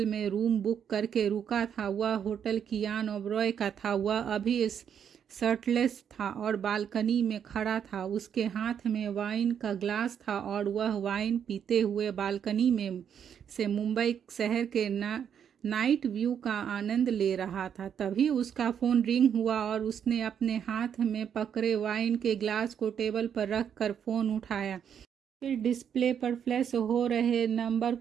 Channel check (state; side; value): quieter; left; 8.3 dB